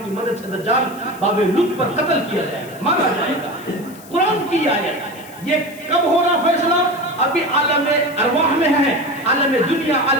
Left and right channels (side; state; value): left; noise; hiss, 21 dB below the sound